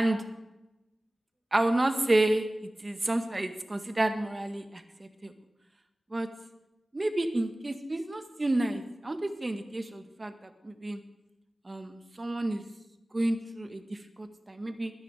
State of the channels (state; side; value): normal; both; correlation 0.98